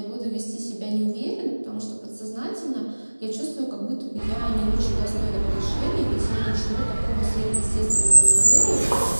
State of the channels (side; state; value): both; inverted; correlation -1.00